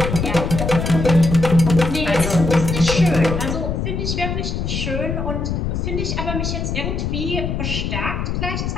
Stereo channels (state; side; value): noise; left; rumble, 2 dB below the sound